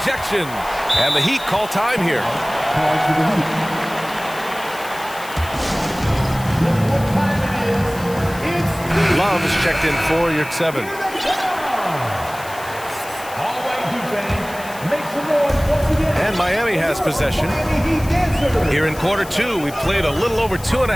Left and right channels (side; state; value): left; noise; hiss, 16 dB below the sound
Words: And the Heat call time here. Love is checked in for Yurtseven. And Miami has possession. Here in quarter 2, we played a little over